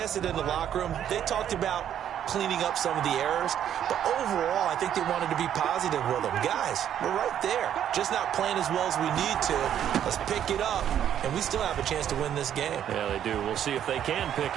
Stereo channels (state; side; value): quieter; left; 10.0 dB